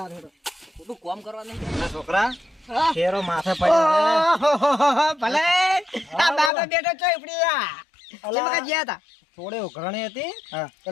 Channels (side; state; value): right; drops out; at 6.5 s